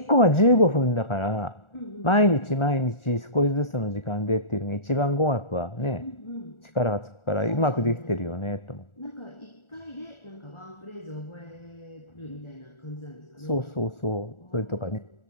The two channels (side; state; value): right; late; 1.4 ms